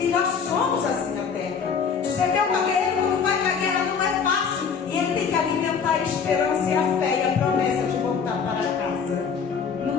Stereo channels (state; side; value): quieter; right; 6.2 dB